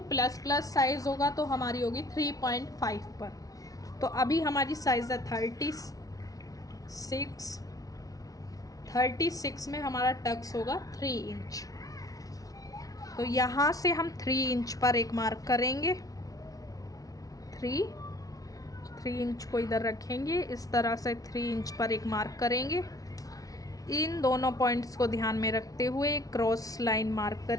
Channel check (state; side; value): late; right; 0.18 ms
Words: प्लस प्लस साइज़ होगा तो हमारी होगी 3.5 पर। तो अभी हमारी साइज़ है 36 में हमारा टक्स होगा 3 इंच। तो यहाँ से हम 3 इंच पर एक मार्क करेंगे, 3 इंच को इधर रखेंगे, इस तरह से 3 इंच पर एक मार्क करेंगे। इन दोनों पॉइंट्स को ध्यान में रखते हुए क्रॉस लाइन मार्क